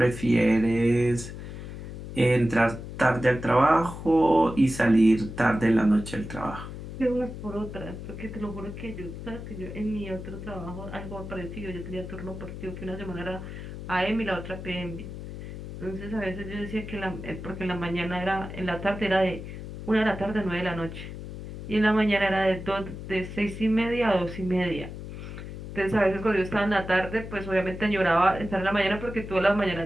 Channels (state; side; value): noise; left; hum, 10 dB below the sound